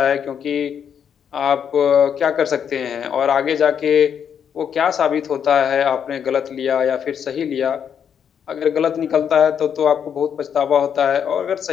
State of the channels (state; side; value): quieter; right; 8.0 dB